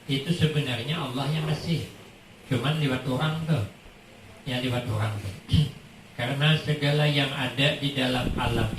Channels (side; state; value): both; identical; correlation 1.00